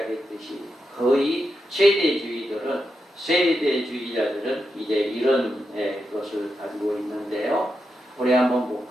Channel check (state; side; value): normal; both; correlation 0.87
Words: 거의 세대주의자들은 이제 이런 것을 가지고 있는데요. 우리 한번